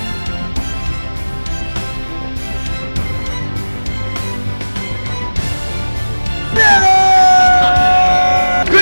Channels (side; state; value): both; inverted; correlation -1.00